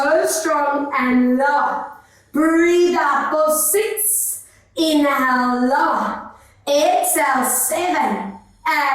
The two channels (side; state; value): both; identical; correlation 1.00